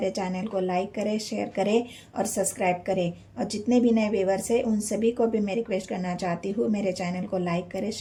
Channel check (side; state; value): both; identical; correlation 1.00